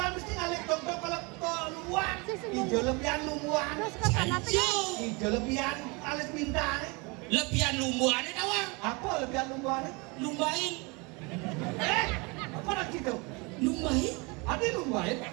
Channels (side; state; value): left; quieter; 28.3 dB